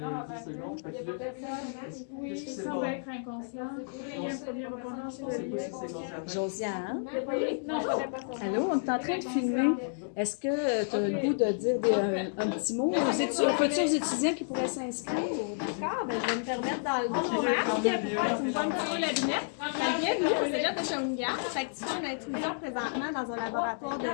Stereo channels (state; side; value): silent; right; digital silence